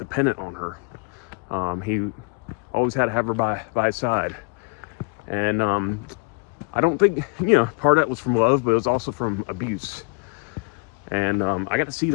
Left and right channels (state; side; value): quieter; right; 31.5 dB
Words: on her. He always had to have her by his side. And I don't think, you know, part of that was from love, but it was also from abuse. And I got to see